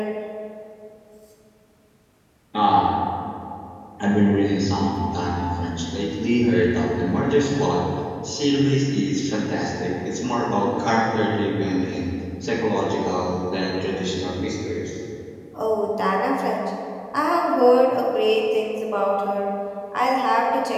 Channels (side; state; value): both; identical; correlation 1.00